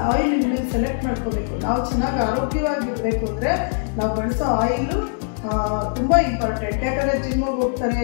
ಆಯಿಲ್ ಸೆಲೆಕ್ಟ್ ಮಾಡ್ಕೋಬೇಕು. ನಾವು ಚೆನ್ನಾಗಿ ಆರೋಗ್ಯವಾಗಿರಬೇಕು ಅಂದರೆ ನಾವು ಬಳಸೋ ಆಯಿಲು ತುಂಬ ಇಂಪಾರ್ಟೆಂಟ್. ಯಾಕಂದರೆ ಜಿಮ್ಮಿಗೆ ಹೋಗ್ತಾರೆ,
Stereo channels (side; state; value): right; silent; digital silence